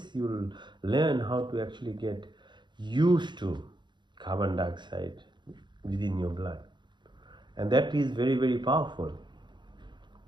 you'll learn how to actually get used to carbon dioxide within your blood. And that is very, very powerful.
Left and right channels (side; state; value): left; late; 0.22 ms